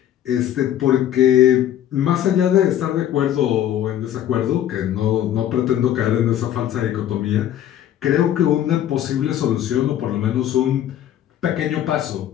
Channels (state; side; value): quieter; right; 11.2 dB